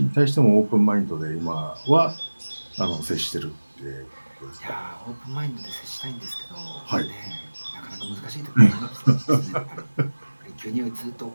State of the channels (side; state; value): both; inverted; correlation -1.00